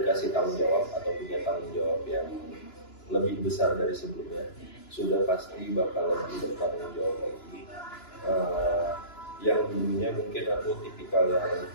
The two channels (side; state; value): right; late; 2.9 ms